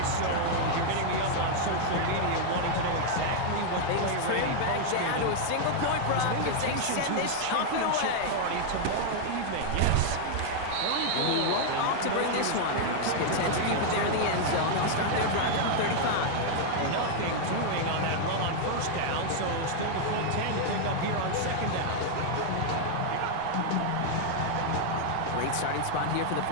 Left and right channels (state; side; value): different; both; correlation 0.00